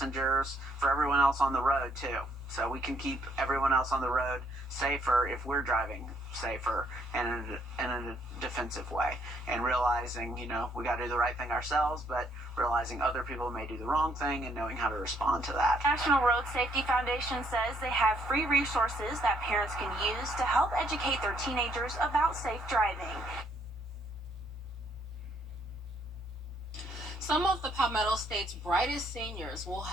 for everyone else on the road too. So we can keep everyone else on the road safer if we're driving safer and in a defensive way. And realizing, we got to do the right thing ourselves, but realizing other people may do the wrong thing and knowing how to respond to that. National Road Safety Foundation says they have free resources that parents can use to help educate their teenagers about safe driving. Some of the Palmetto State's brightest seniors will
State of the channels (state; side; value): normal; both; correlation 0.69